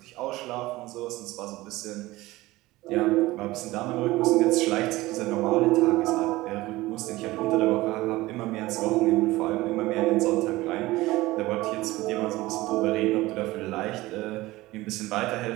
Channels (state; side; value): quieter; left; 18.8 dB